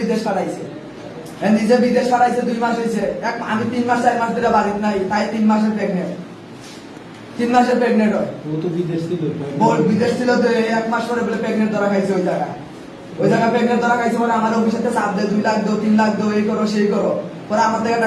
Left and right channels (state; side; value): identical; both; correlation 1.00